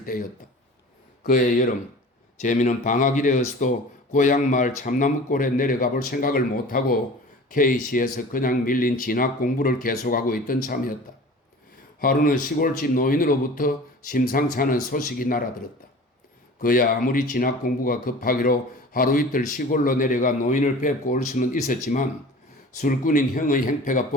때였다. 그해 여름 재민은 방학이되었어도 고향 마을 참나무골에 내려가 볼 생각을 못하고 K시에서 그냥 밀린 진학 공부를 계속하고 있던 참이었다. 하루는 시골집 노인으로부터 심상치 않은 소식이 날아들었다. 그야 아무리 진학 공부가 급하기로 하루 이틀 시골로 내려가 노인을 뵙고 올 수는 있었지만 술꾼인 형의 행패가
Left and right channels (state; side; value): normal; both; correlation 0.41